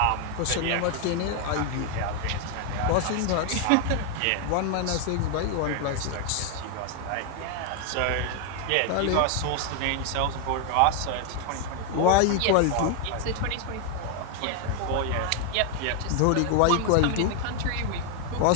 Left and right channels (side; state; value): both; different; correlation 0.00